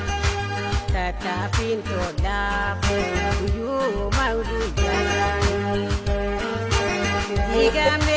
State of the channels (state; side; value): identical; both; correlation 1.00